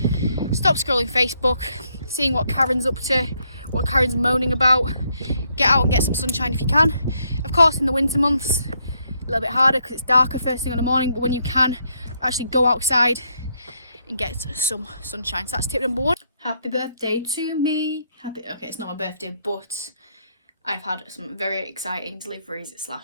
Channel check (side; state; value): both; inverted; correlation -0.75